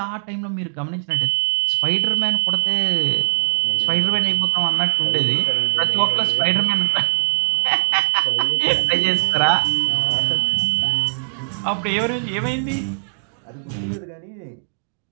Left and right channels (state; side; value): silent; left; digital silence